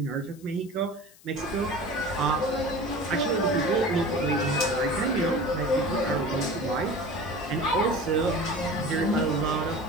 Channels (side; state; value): left; noise; hiss, 25 dB below the sound